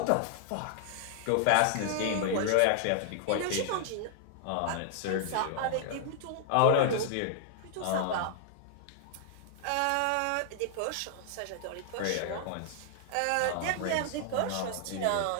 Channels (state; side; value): different; both; correlation -0.01